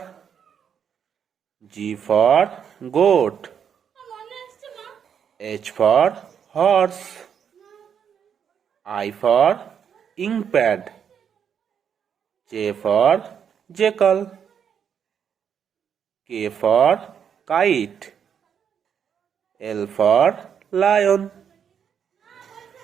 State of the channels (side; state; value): left; quieter; 7.8 dB